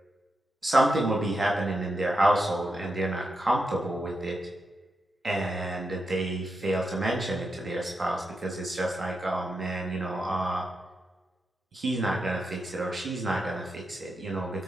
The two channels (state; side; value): normal; both; correlation 0.86